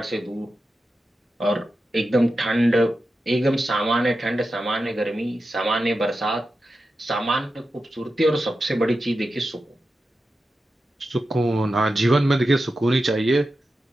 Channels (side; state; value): both; normal; correlation 0.91